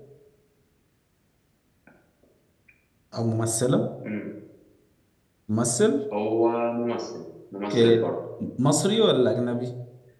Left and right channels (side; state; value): both; identical; correlation 1.00